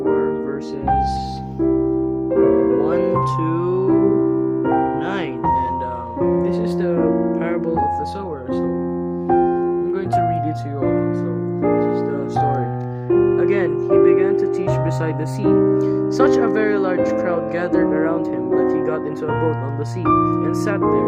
verses 1 to 9, and this is the parable of the sower. So I'm going to read it to you all. So this is the story. Again, he began to teach beside the sea. Such a very large crowd gathered around him that he got into a boat on the sea and sat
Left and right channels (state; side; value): identical; both; correlation 1.00